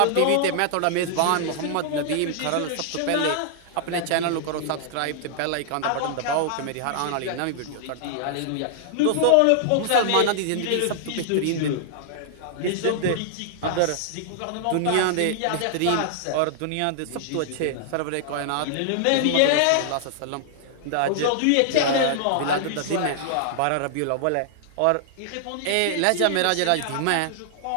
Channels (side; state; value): both; different; correlation -0.01